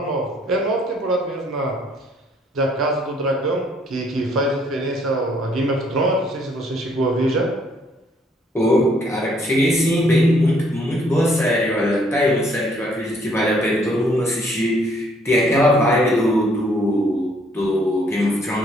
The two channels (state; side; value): normal; both; correlation 0.65